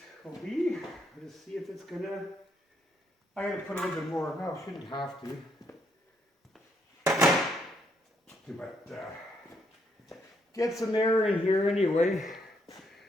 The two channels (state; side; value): normal; both; correlation 0.74